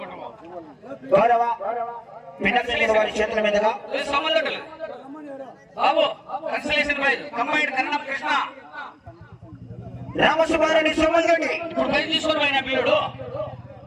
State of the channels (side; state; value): both; identical; correlation 1.00